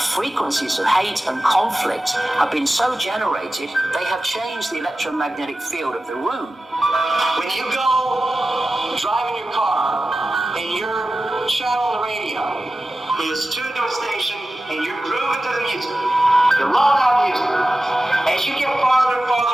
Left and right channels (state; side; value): normal; both; correlation 0.95